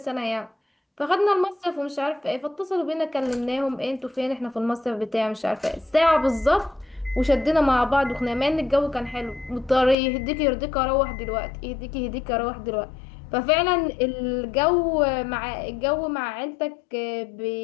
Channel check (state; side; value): drops out; right; at 10.0 s